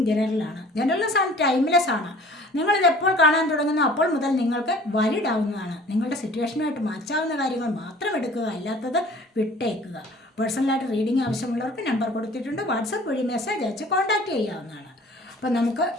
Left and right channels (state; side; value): normal; both; correlation 0.49